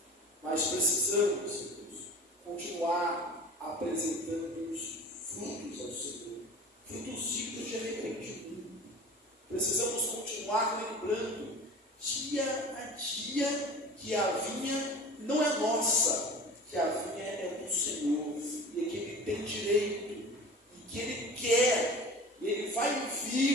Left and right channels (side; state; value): both; normal; correlation 0.39